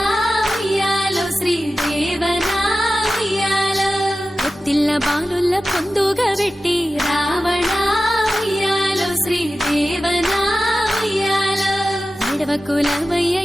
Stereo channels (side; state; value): both; normal; correlation 0.94